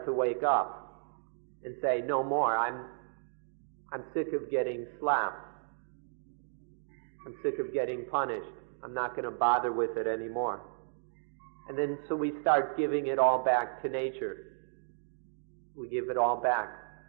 to wake up and say, no more, I'm sick of getting slapped. I'm sick of getting punished. I'm not going to bother with it anymore. And then so we start giving it all back to nature. We give it all back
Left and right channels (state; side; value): silent; left; digital silence